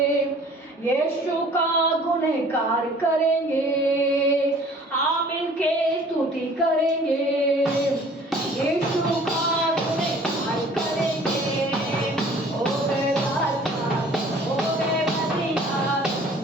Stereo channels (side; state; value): both; normal; correlation 0.51